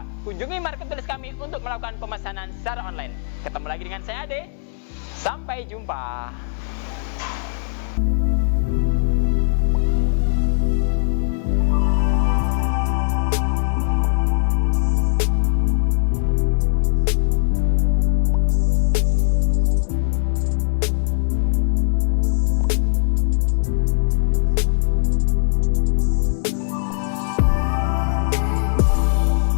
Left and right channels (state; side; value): silent; right; digital silence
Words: kunjungi marketplace kami untuk melakukan pemesanan secara online. Ketemu lagi dengan saya Ade. Sampai jumpa.